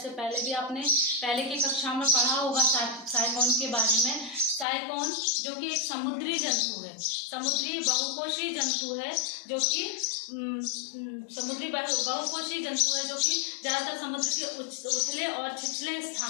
पहले भी आपने पहले की कक्षा में पढ़ा होगा साइकोन के बारे में। साइकोन जो कि एक समुद्री जंतु है, समुद्री बहुकोषीय जंतु है, जो कि समुद्री बहुकोषीय जंतु है, जो कि ज़्यादातर समुद्र के उथले और छिछले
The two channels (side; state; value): right; drops out; at 4.7 s